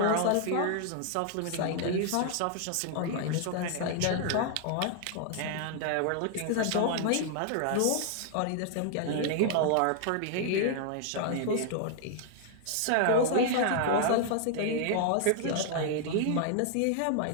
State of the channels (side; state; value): both; different; correlation 0.00